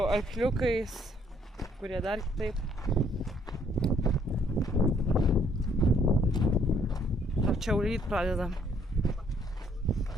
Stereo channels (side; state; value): both; normal; correlation 0.66